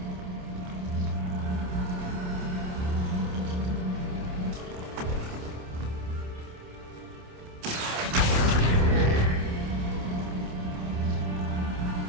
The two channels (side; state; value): left; late; 28 ms